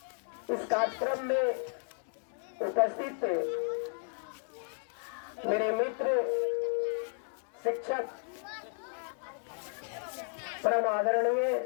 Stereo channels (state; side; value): silent; right; 55 dB below the other